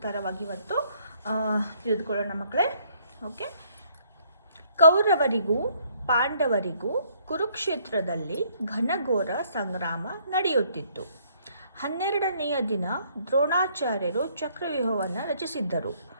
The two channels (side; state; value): both; inverted; correlation -0.66